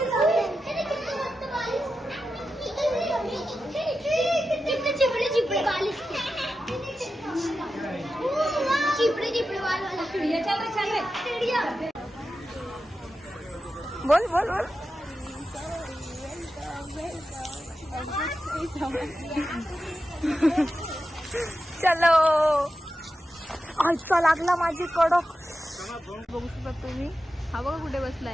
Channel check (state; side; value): normal; both; correlation 0.91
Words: चिपड़े चिपड़े बाल इसके. चिपड़े चिपड़े बाल वाला चिड़िया. चलो चलो चिड़िया. बोल बोल बोल. चलो आजचा लागला माझी कडक. बघू शकता तुम्ही. हा बघा कुठे